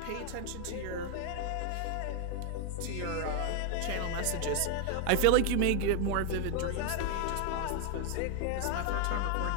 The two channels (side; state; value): both; different; correlation 0.01